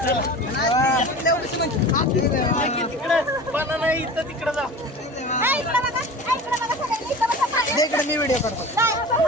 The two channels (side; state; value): both; normal; correlation 0.36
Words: इथं तिकडे जा. इकडे मी व्हिडिओ करतो.